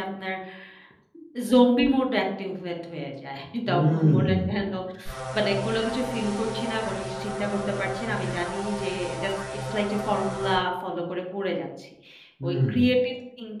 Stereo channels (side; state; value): both; identical; correlation 1.00